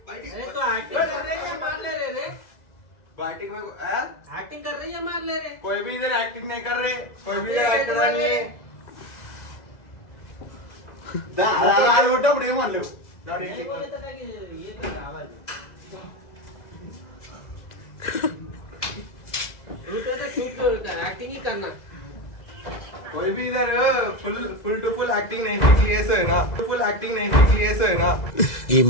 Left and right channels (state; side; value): late; right; 2.0 ms